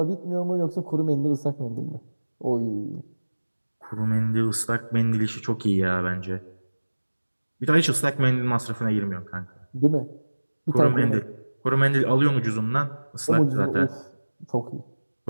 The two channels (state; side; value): inverted; both; correlation -1.00